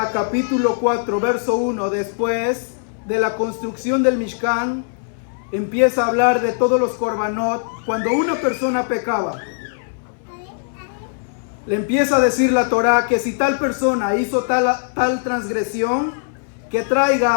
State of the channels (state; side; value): silent; right; 62 dB below the other